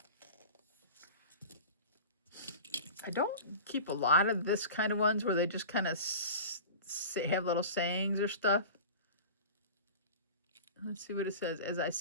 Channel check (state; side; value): inverted; both; correlation -0.35